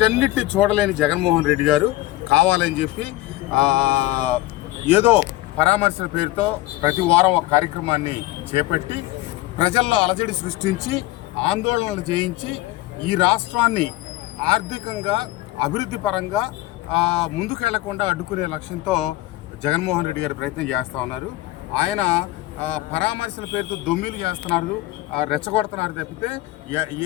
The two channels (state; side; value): quieter; right; 17.5 dB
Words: చూడలేని జగన్మోహన్ రెడ్డి గారు కావాలని చెప్పి ఏదో పరామర్శల పేరుతో ప్రతి వారం ఒక కార్యక్రమాన్ని చేపట్టి ప్రజల్లో అలజడి సృష్టించి ఆందోళనలు చేయించి ఈ రాష్ట్రాన్ని ఆర్థికంగా, అభివృద్ధి పరంగా ముందుకు వెళ్లకుండా అడ్డుకునే లక్ష్యంతో జగన్మోహన్ రెడ్డి గారు ప్రయత్నం చేస్తూ ఉన్నారు. ఆయన పరామర్శల పేరుతో దొమ్మిలు చేస్తున్నారు, రెచ్చగొడుతున్నారు తప్పితే